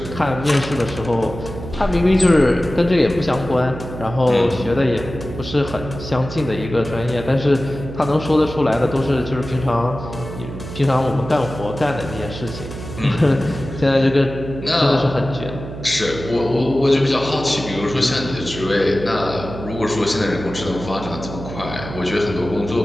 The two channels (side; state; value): right; noise; hum, 10 dB below the sound